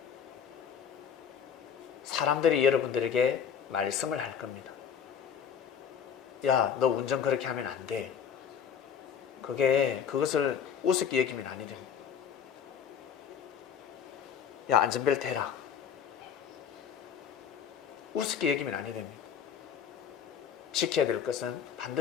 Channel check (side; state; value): right; quieter; 7.8 dB